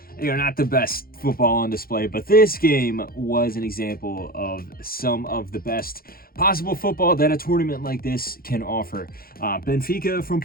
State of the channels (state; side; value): late; right; 0.43 ms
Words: Not the best football on display, but this game was an example of some of the best possible football that a tournament like this can offer. Benfica from